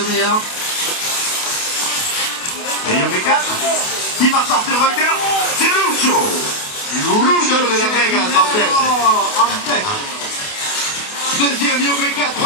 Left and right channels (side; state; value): right; late; 28 ms